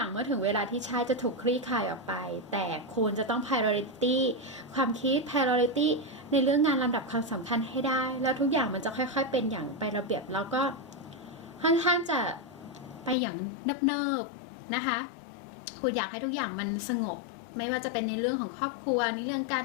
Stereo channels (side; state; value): right; drops out; at 13.2 s